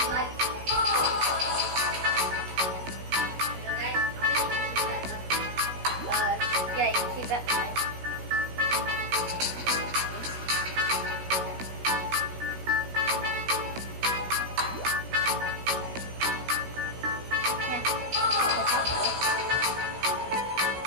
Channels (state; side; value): late; left; 16 ms